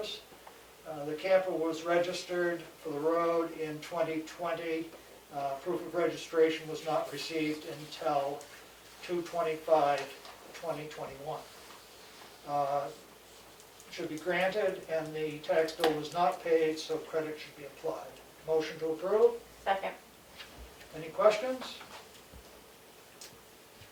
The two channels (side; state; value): both; identical; correlation 1.00